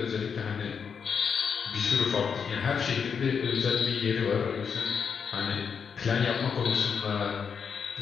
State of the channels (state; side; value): quieter; right; 6.5 dB